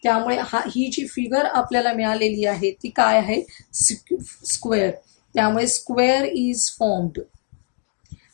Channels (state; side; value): quieter; right; 39.5 dB